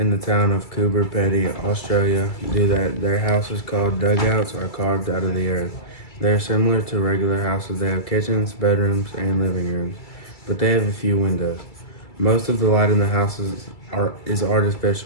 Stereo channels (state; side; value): late; right; 2.3 ms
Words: the town of Coober Pedy, Australia, do that. Their houses, called dugouts, are carved out of the earth. They are similar to regular houses. They have kitchens, bedrooms, and living rooms, but they have a few windows. Most of the light in the houses is